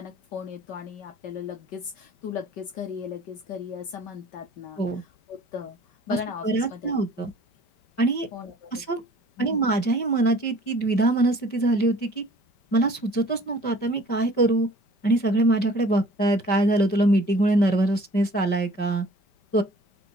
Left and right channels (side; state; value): right; late; 5.1 ms